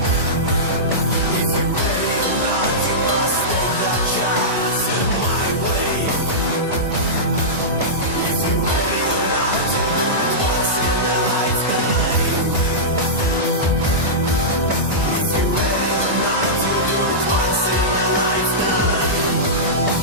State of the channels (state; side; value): normal; both; correlation -0.15